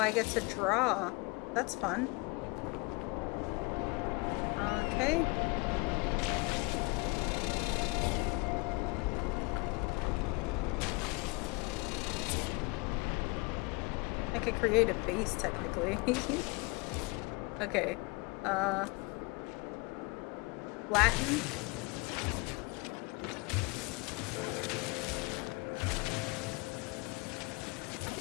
get to draw. That's fun. Okay. I could create a base technically. Okay. Latin.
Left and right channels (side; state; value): right; quieter; 27.2 dB